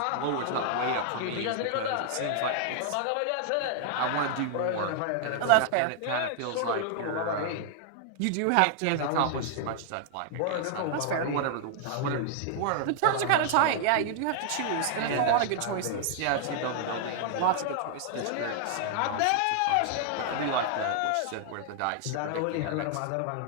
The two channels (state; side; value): different; both; correlation 0.00